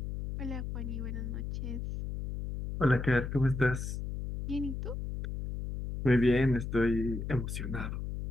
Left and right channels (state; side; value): noise; left; hum, 5 dB below the sound